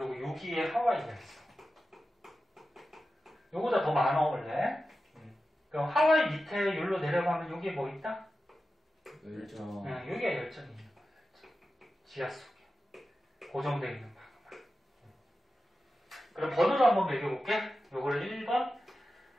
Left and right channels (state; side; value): normal; both; correlation 0.92